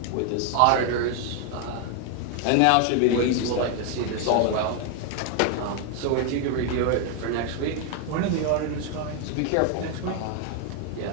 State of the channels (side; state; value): both; different; correlation 0.00